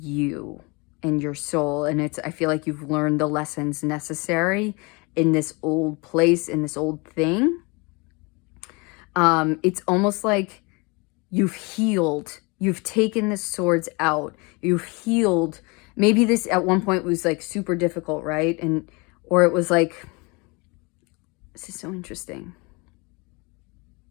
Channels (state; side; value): quieter; right; 28.3 dB